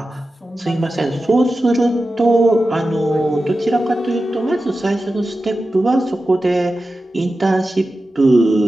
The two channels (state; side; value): normal; both; correlation 0.93